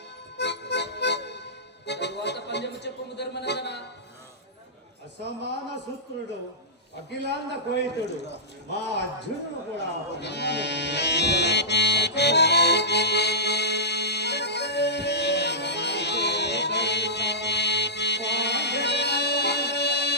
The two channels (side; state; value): both; normal; correlation -0.16